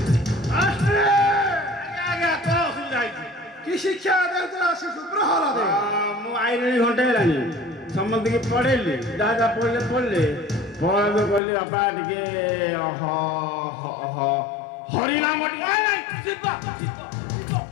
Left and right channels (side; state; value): right; drops out; at 11.4 s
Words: কি শিক্ষা দেওয়া শিশু প্রহ্লাদ ମୁଁ ଆଇଲିଣି ଘଣ୍ଟେ ହେଲାଣି ସମସ୍ତଙ୍କୁ ପଢେଇଲି ଯାହା ଯାହା ପଢିଲେ ପ୍ରହ୍ଲାଦ କହିଲି ବାପା ଟିକେ ହରିନାମ